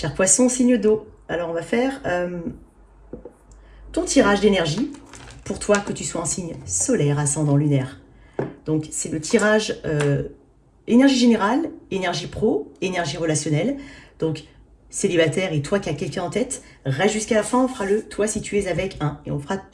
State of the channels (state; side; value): identical; both; correlation 1.00